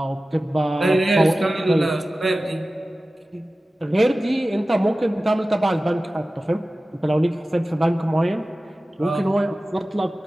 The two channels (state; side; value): normal; both; correlation 0.96